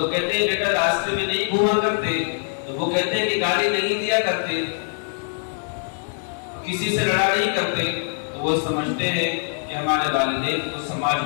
کہتے ہیں بیٹا راستے میں نہیں گھوما کرتے، تو وہ کہتے ہیں کہ گاڑی نہیں دیا کرتے، کسی سے لڑا نہیں کرتے، تو وہ سمجھتے ہیں کہ ہمارے والدین کو سماج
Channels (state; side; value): silent; right; digital silence